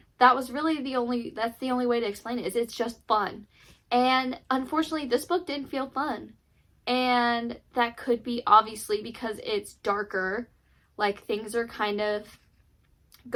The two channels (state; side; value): identical; both; correlation 1.00